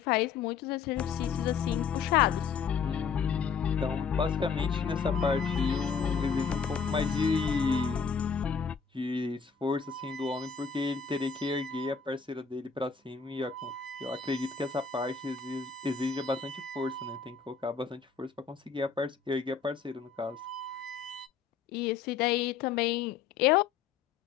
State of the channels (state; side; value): quieter; right; 6.1 dB